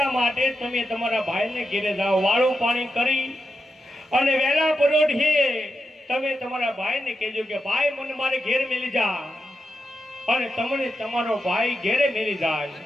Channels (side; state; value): both; normal; correlation 0.87